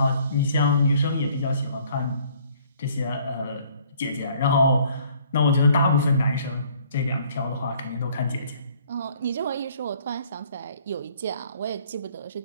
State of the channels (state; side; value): inverted; both; correlation -0.59